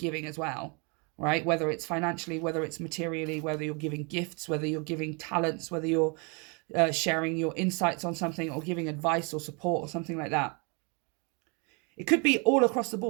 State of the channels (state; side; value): quieter; left; 32.9 dB